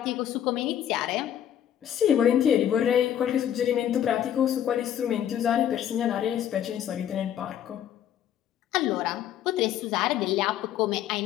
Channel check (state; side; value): quieter; right; 10.4 dB